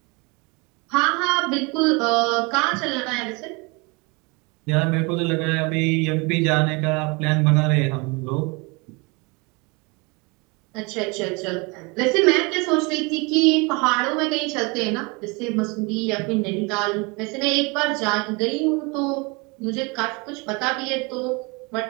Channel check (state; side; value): quieter; left; 28.4 dB